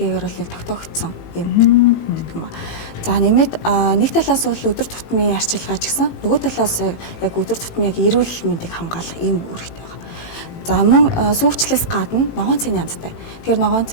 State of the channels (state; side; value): late; right; 18 ms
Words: бол тогтоогдсон юм гэдэг юм. За нэмээд нэг талаас бол өдөр тутмын арчилгаа ч гэсэн нөгөө талаас яг өдөр тутмын яг эрүүл мэндийг хамгаалах юм үүрэгтэй байна. За мөн сүүгчлээс гадна ногоон цайны янзтай. Тэгэхээр ногоон